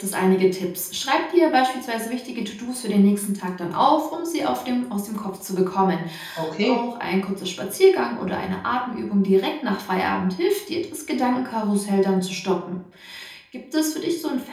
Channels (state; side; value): identical; both; correlation 1.00